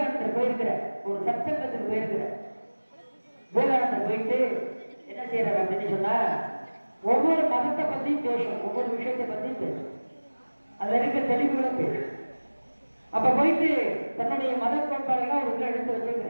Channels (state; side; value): inverted; both; correlation -1.00